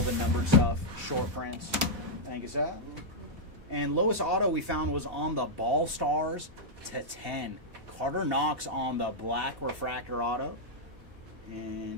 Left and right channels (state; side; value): late; left; 4.1 ms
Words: the numbered stuff, short prints. Thank you, sir. And lowest auto we found was on the Ball Stars to 10. Carter Knox on the black refractor auto.